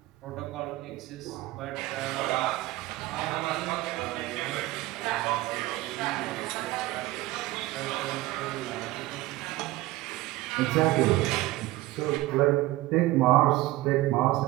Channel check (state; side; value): quieter; left; 17.8 dB